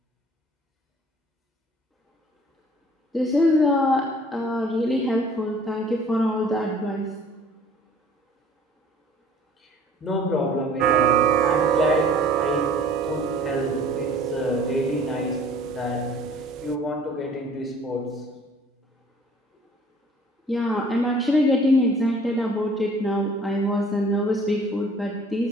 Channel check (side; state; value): both; normal; correlation 0.52